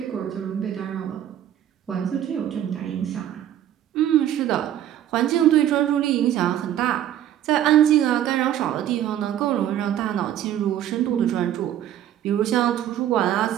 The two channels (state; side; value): quieter; left; 11.3 dB